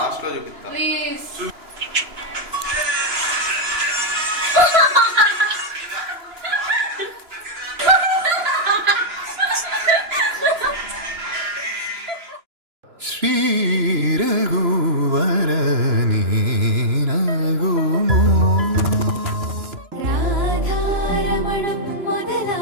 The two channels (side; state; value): left; late; 2.9 ms